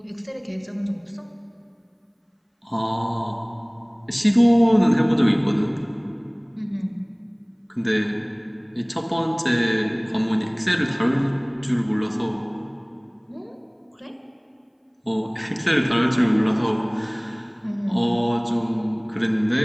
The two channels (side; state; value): both; identical; correlation 1.00